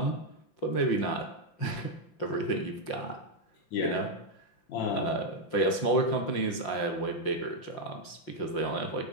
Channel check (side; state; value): right; late; 5.7 ms